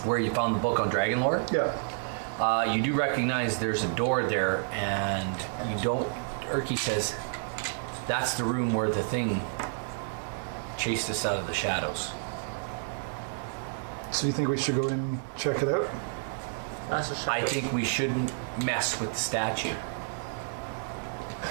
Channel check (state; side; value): silent; left; digital silence